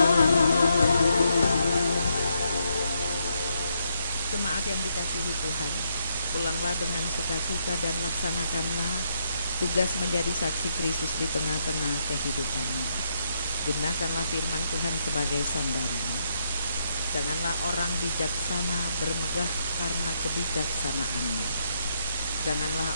Jemaat yang dikasihi Tuhan, pulanglah dengan sukacita dan laksanakanlah tugas menjadi saksi Kristus di tengah-tengah kehidupanmu. Gunakanlah firman Tuhan sebagai sandaran. Janganlah orang bijaksana bermegah karena kebijaksanaannya.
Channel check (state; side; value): inverted; both; correlation -0.78